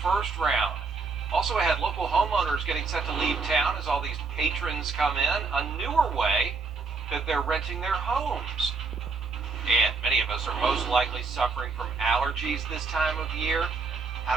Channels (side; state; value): left; quieter; 4.4 dB